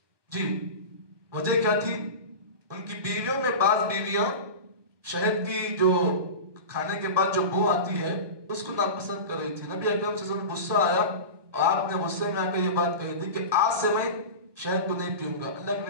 جی وجہ کیا تھی, ان کی بیویوں میں بعض بیویاں شہد کی جو کھانے کے بعد جو بو آتی ہے اس کو ناپسند کر رہی تھی. نبی اکرم صلی اللہ علیہ وسلم غصہ آیا اور آپ نے غصے میں آ کر یہ بات کہی تھی کہ آج سے میں شہد کو نہیں پیوں گا. اللہ کے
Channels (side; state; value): left; late; 1.2 ms